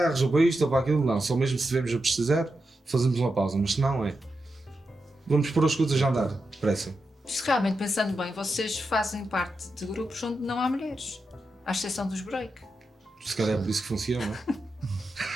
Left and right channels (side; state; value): both; normal; correlation 0.88